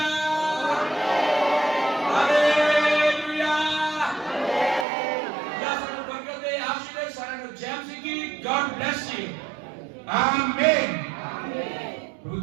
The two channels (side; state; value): left; drops out; at 4.9 s